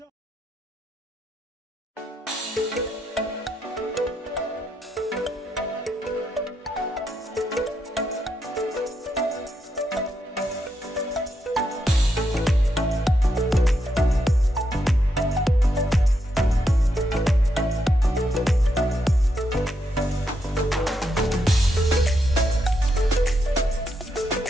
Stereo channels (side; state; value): both; normal; correlation 0.81